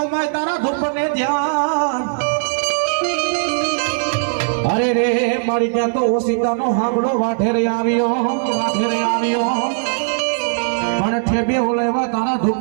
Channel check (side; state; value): left; silent; digital silence